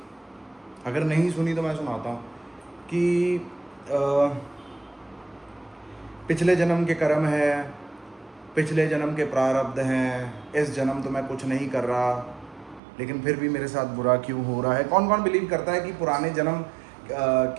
अगर नहीं सुनी तो मैं सुनाता हूँ कि पिछले जन्म के कर्म है, पिछले जन्म के प्रारब्ध हैं, इस जन्म तो मैं कुछ नहीं कर रहा, लेकिन फिर भी मेरे साथ बुरा क्यों हो रहा है। कौन कौन बिलीव करता है कि पुराने जन्म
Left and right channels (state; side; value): drops out; left; at 12.8 s